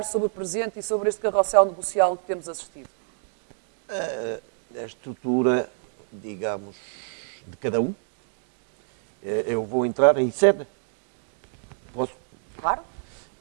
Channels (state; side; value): silent; left; digital silence